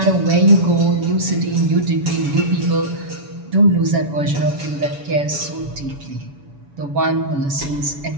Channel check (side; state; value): left; late; 7.1 ms